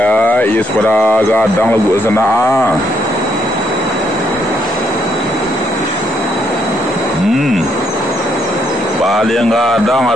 ia pada gadang lagu sana. Paling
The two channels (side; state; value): both; normal; correlation 0.74